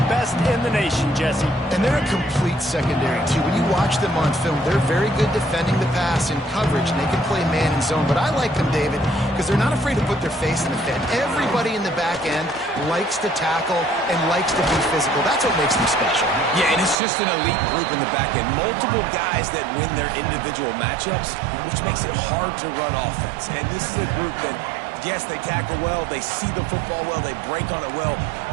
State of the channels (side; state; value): left; drops out; at 16.9 s